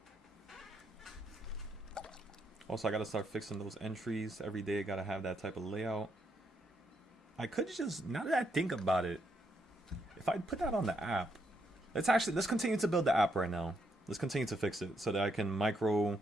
Also, I gotta start fixing those entries every day. Gotta have that type of layout. I could just, now that I think about it, if I put that on the app, let's continue to build the app right now. Let's continue to fix it so that I can like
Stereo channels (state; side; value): normal; both; correlation 0.77